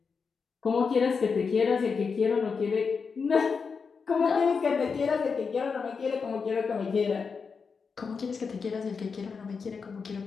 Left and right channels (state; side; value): quieter; right; 5.4 dB